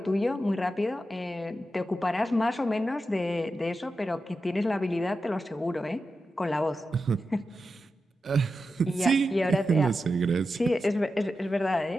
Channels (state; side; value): normal; both; correlation 0.90